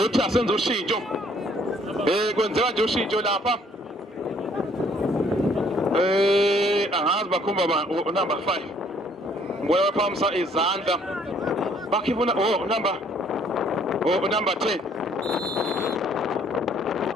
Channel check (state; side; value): normal; both; correlation 0.62